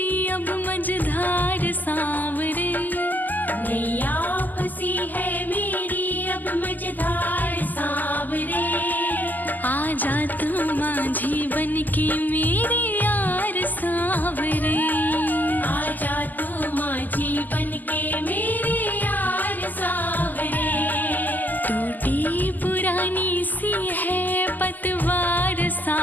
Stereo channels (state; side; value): late; right; 0.084 ms